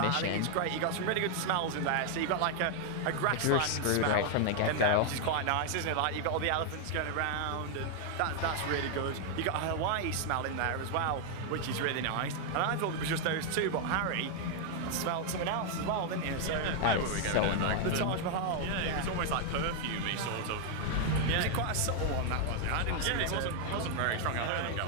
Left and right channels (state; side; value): different; both; correlation 0.00